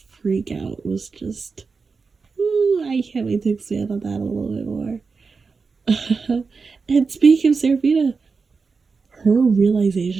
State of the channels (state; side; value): quieter; left; 4.7 dB